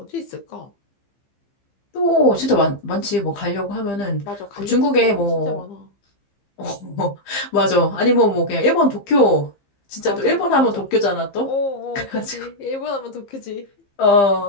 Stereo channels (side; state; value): right; late; 15 ms